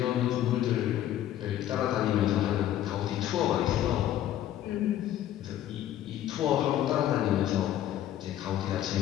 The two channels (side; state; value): right; quieter; 12.1 dB